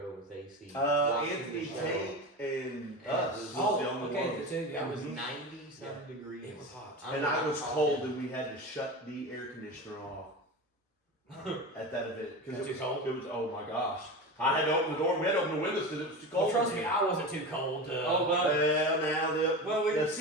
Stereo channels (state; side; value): normal; both; correlation 0.26